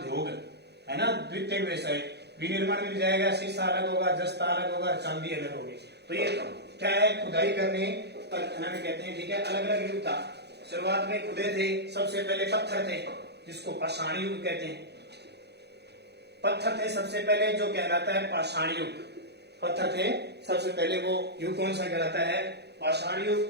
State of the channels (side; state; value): left; late; 0.48 ms